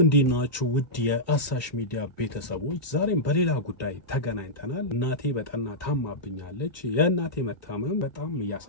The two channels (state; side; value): late; right; 1.9 ms